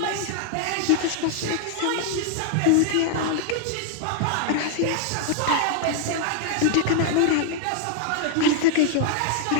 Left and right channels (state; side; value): different; both; correlation -0.01